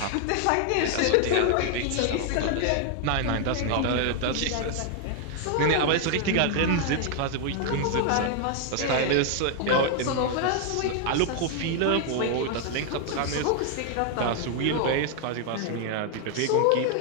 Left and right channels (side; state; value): both; different; correlation 0.00